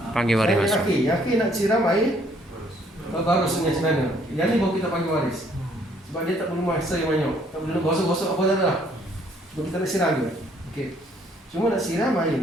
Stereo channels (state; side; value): normal; both; correlation 0.64